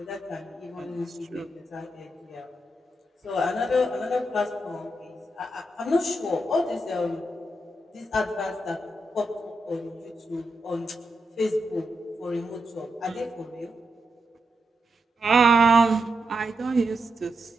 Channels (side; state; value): both; normal; correlation 0.85